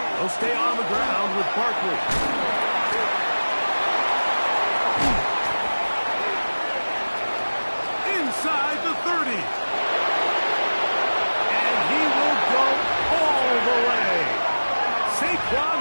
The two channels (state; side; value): inverted; both; correlation -1.00